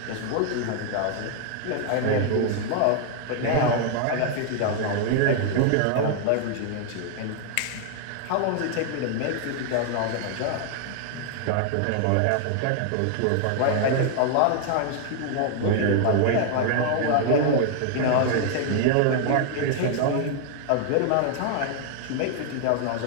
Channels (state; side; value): different; both; correlation 0.00